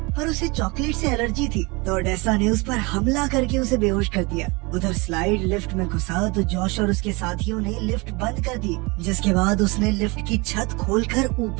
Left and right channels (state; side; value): quieter; left; 26.7 dB